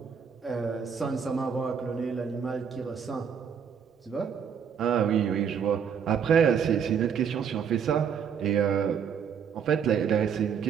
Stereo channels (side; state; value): left; quieter; 7.3 dB